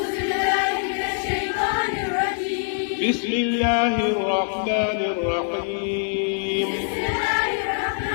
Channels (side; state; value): right; silent; digital silence